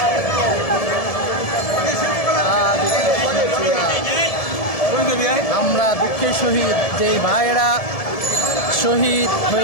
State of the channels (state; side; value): late; right; 1.7 ms